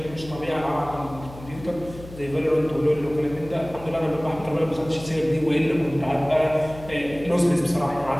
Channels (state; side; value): noise; left; hum, 16 dB below the sound